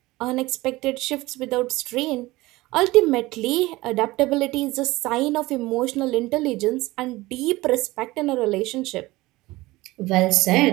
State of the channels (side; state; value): left; quieter; 19.6 dB